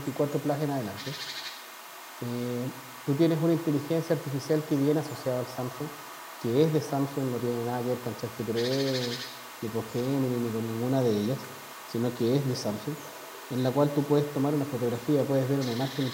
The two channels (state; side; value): identical; both; correlation 1.00